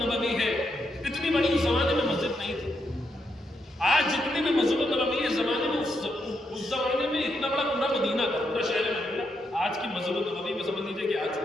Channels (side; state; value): both; normal; correlation 0.81